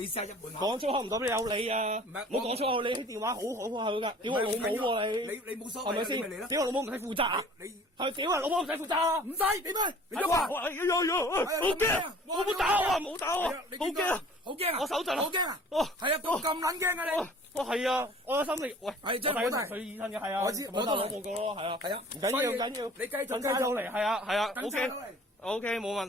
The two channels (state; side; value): normal; both; correlation 0.48